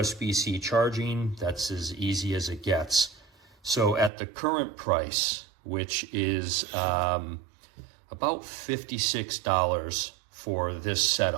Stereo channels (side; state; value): left; drops out; at 4.1 s